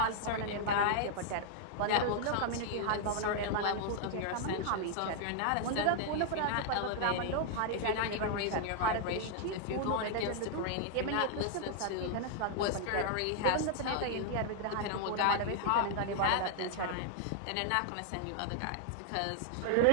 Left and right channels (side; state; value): both; different; correlation 0.00